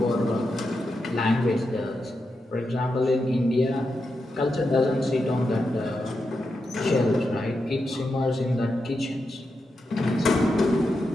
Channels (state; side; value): normal; both; correlation 0.87